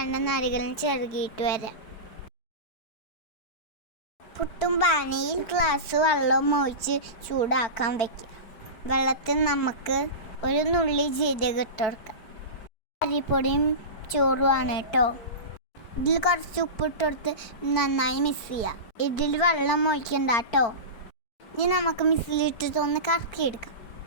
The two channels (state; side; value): late; right; 4.6 ms